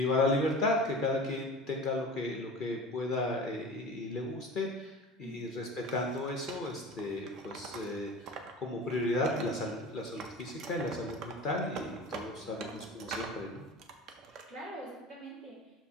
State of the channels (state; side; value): normal; both; correlation 0.36